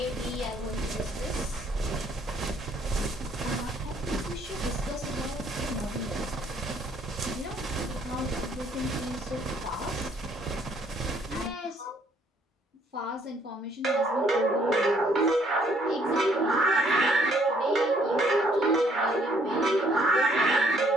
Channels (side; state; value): both; normal; correlation 0.65